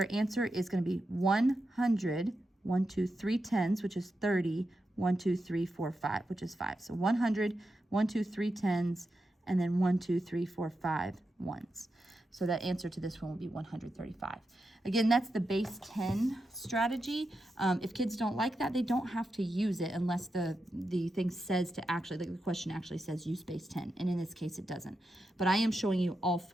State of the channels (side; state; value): both; normal; correlation 0.88